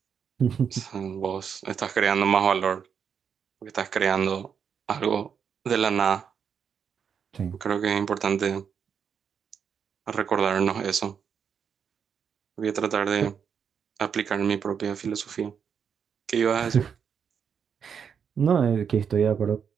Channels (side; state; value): left; quieter; 7.2 dB